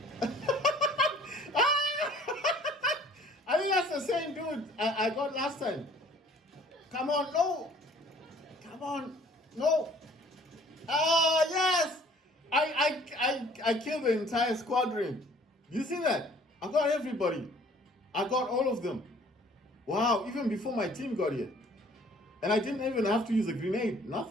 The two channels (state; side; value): normal; both; correlation 0.54